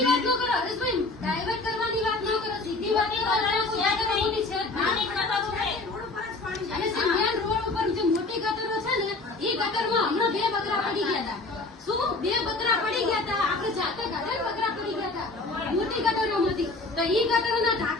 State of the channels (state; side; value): quieter; right; 3.3 dB